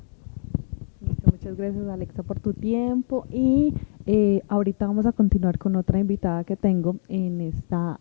Listo, muchas gracias Alexa por tu tiempo y ahorita vamos a continuar con otra invitada que tengo en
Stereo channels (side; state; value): right; silent; digital silence